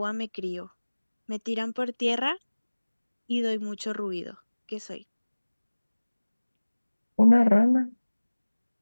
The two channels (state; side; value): inverted; both; correlation -1.00